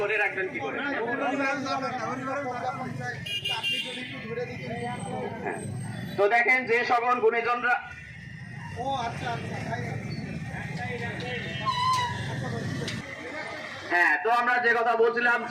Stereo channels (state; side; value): identical; both; correlation 1.00